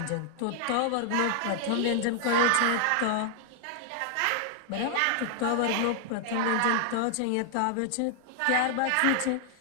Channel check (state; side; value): different; both; correlation 0.00